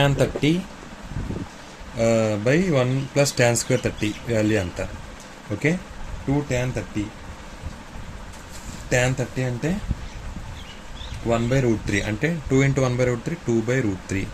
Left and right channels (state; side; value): identical; both; correlation 1.00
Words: 30 by 1 plus tan square 30 value అంత. ఓకే, 2 tan 30 అంటే 1/√3 అంటే 2 × 1/√3 2/√3